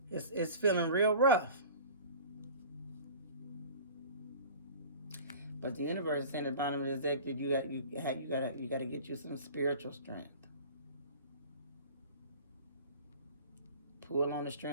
It's feeling real rough. But the universe is saying at the bottom of this deck that you got to get you some spiritual strength. Pull on the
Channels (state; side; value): inverted; both; correlation -0.41